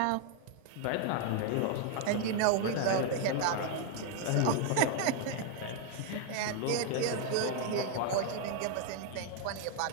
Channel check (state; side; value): different; both; correlation 0.00